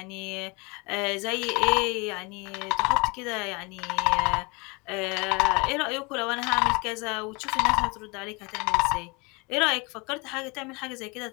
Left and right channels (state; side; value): quieter; right; 28.2 dB